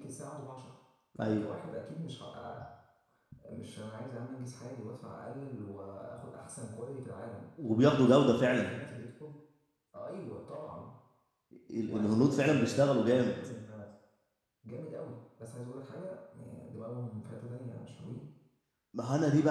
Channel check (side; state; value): both; identical; correlation 1.00